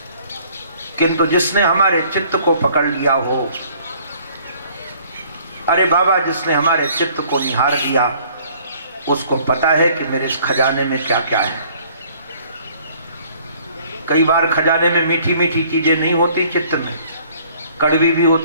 किंतु जिसने हमारे चित्त को पकड़ लिया हो, अरे बाबा, जिसने हमारे चित्त को निहार लिया, उसको पता है कि मेरे इस खजाने में क्या क्या है। कई बार खजाने में मीठी मीठी चीजें नहीं होती, चित्त में कड़वी भी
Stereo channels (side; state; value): both; inverted; correlation -0.58